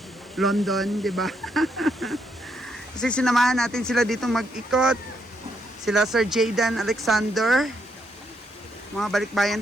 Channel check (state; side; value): normal; both; correlation 0.77